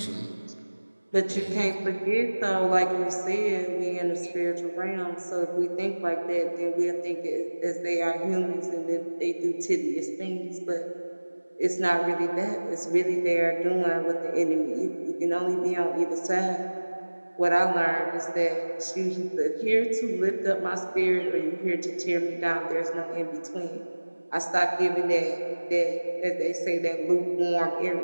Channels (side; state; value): both; inverted; correlation -1.00